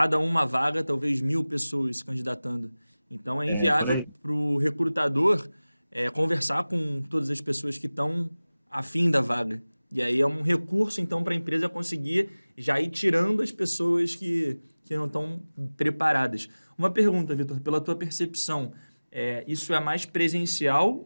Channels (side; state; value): both; inverted; correlation -0.99